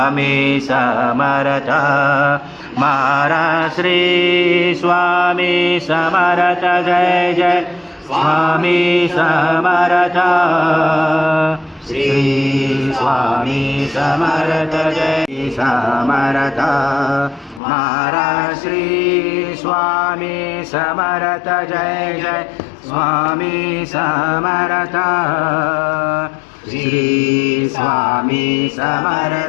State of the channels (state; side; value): drops out; right; at 17.6 s